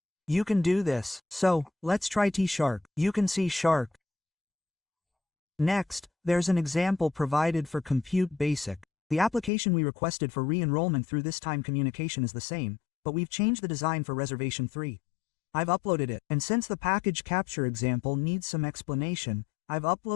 You can do this, so let's try T#. You can see Shark. Next, there's an example provided for Compute Basic. The application we requested for re-enrollment through this time communication is the same, but we've changed the design for Reservation 3. I've uploaded it, and since the package capture example needs some explanation, I've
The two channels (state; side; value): drops out; right; at 9.5 s